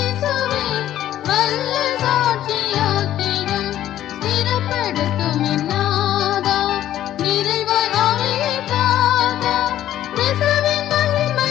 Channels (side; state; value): right; quieter; 12.4 dB